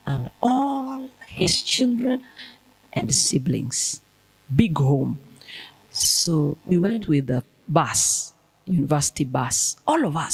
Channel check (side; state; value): both; identical; correlation 1.00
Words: and all his children and siblings. Big home. So we went with the bus, university bus, all of